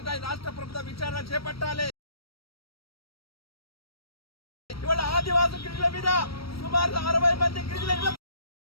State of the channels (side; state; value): right; late; 0.75 ms